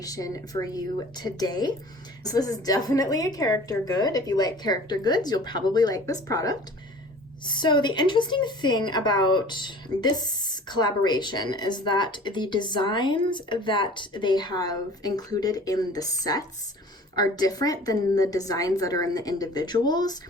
for you today. So this is definitely a character good. If you like character goods, you'll probably like this product. So the interesting thing about this collaboration is that the designs that they have included in the sets are different than the designs that are in the individuals.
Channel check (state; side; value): normal; both; correlation 0.45